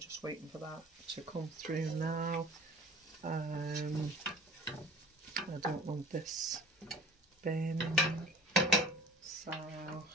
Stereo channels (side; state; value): both; normal; correlation 0.43